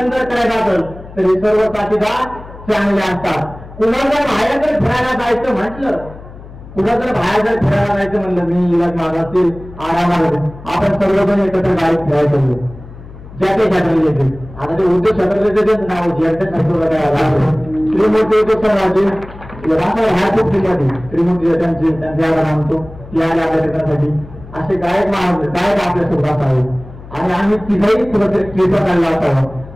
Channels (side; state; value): left; noise; hum, 17 dB below the sound